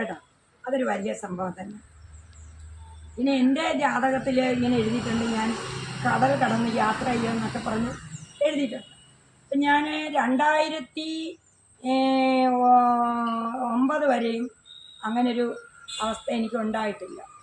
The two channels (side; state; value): both; identical; correlation 1.00